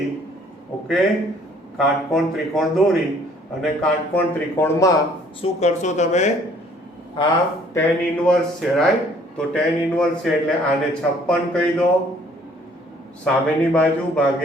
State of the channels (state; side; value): normal; both; correlation 0.59